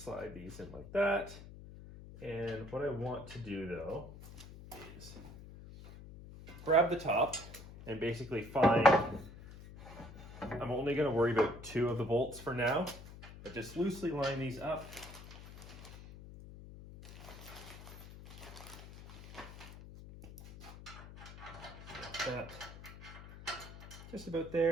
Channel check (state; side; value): noise; left; hum, 15 dB below the sound